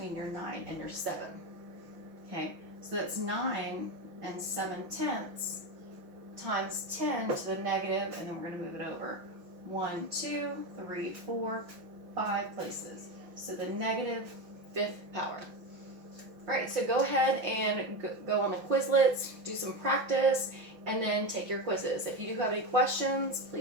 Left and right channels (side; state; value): left; late; 6.1 ms